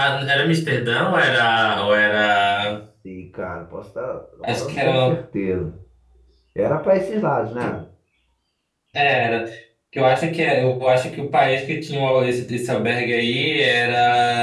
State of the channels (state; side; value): identical; both; correlation 1.00